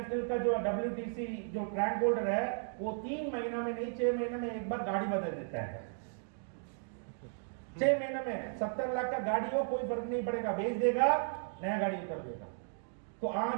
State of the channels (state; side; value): silent; left; digital silence